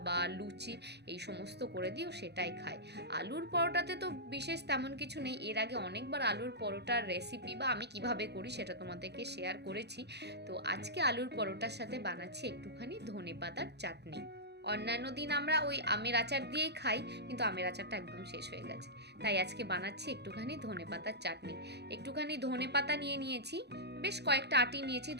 বা লুচি এই সমস্ত করে দিও, সেটাই খায়। আলুর পরোটাতে তো বিশেষ তেমন কিছু নেই, এর আগে অনেকবার আলুর পরোটার রেসিপি বা আমি কিভাবে করি সেটা তোমাদেরকে শেয়ার করেছি। তো আজকে আলুর পরোটার সাথে বানাচ্ছি একটুখানি ধনেপাতার চাটনি। অন্যান্য দিন আমরা ওই আমের আচার দিয়েই খাই, কিন্তু আমের আচারটা একদম শেষ হয়ে গেছে, তাই আজকে বানাচ্ছি একটুখানি ধনেপাতার চাটনি। একটুখানি ধনেপাতা নিয়ে নিয়েছি, বেশ কয়েকটা আটি নিয়েছি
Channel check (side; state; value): left; late; 0.49 ms